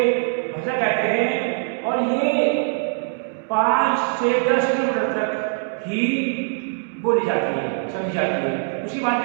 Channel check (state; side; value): silent; left; 64 dB below the other